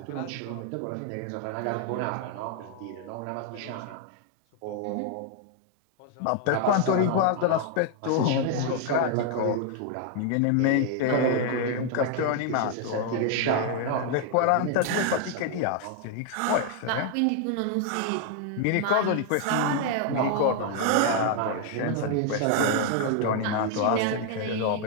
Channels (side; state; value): both; different; correlation 0.00